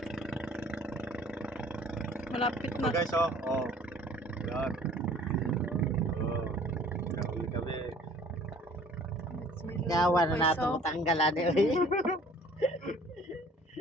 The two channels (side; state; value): both; normal; correlation 0.52